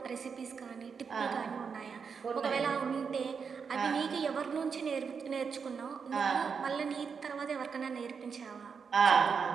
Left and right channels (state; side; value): quieter; left; 6.0 dB